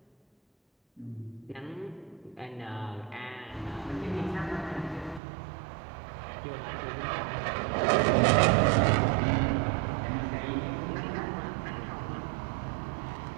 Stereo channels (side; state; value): left; drops out; at 5.2 s